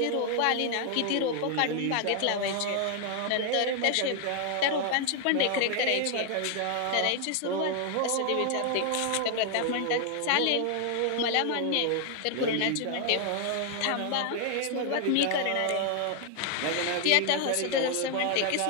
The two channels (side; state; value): both; different; correlation 0.00